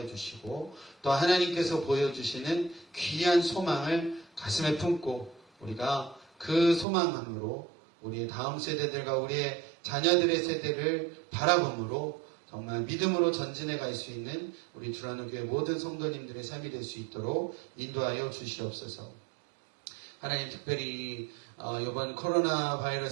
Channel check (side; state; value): left; drops out; at 6.9 s